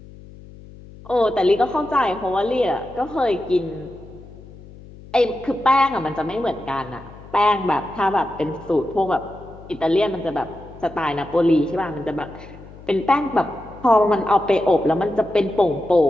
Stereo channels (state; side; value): noise; left; hum, 19 dB below the sound